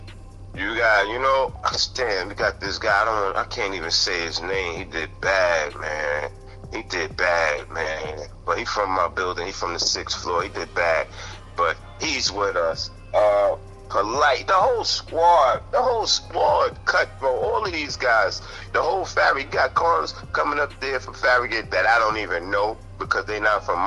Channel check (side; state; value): both; identical; correlation 1.00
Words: You got, you know, damn, we got this guy. I can't even say his name. He did bad, man. He did bad, man. But he from my building. He from the 6th floor. He did bad. But he's with us. Polite. The whole squad. Cutthroat. All of these guys. The whole Farragut. Got cars coming up there for Farragut that I don't even know because they not from